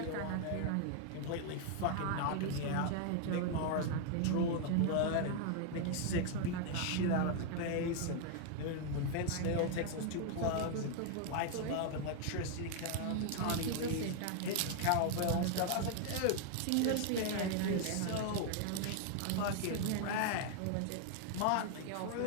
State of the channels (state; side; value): different; both; correlation 0.00